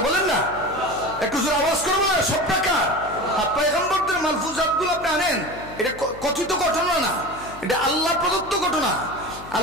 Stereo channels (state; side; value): noise; left; hum, 18 dB below the sound